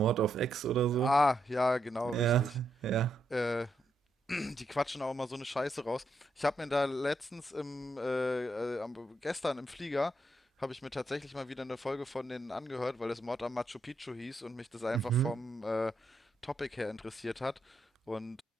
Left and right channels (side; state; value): both; normal; correlation 0.80